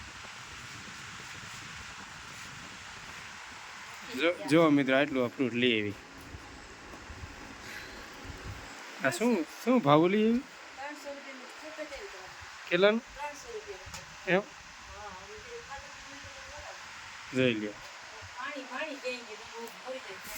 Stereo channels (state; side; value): identical; both; correlation 1.00